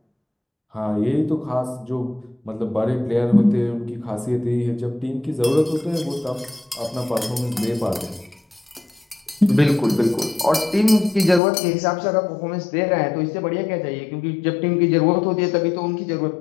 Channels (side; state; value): right; drops out; at 11.4 s